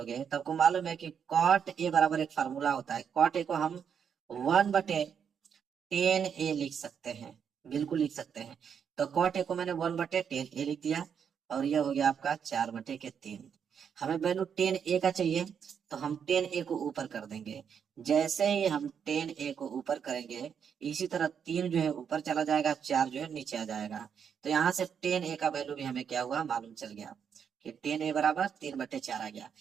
तब को मालूम है कि कॉट ए बराबर एक फार्मूला होता है। कॉट ए को हम 1/10 ए लिख सकते हैं, बिल्कुल लिख सकते हैं। तो कॉट ए को मैंने 1/10 ए लिख दिया, और यह हो गया आपका 4/3। हमें वैल्यू 10 ए का चाहिए, तो हम 10 ए को ऊपर कर देंगे। जैसे ही हम 10 ए को ऊपर करेंगे, इसी तरह 3 जो है ऊपर चला जाएगा, 4 जो है नीचे आ जाएगा। तो यहाँ से 10 ए का वैल्यू भी हमें क्या हुआ मालूम चल गया कि 10 ए बराबर 3/4 आ गया।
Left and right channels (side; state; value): left; quieter; 7.5 dB